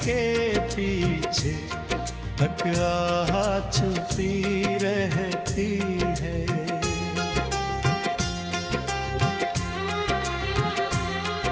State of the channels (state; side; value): identical; both; correlation 1.00